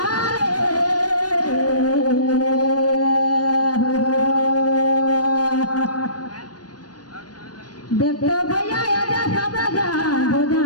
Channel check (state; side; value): late; right; 0.69 ms